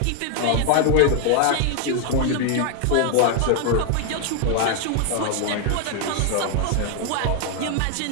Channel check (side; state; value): both; different; correlation 0.00